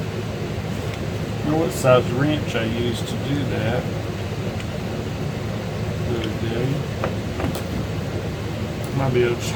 don't know what size wrench I used to do that the other day. Might be able to just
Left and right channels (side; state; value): both; identical; correlation 1.00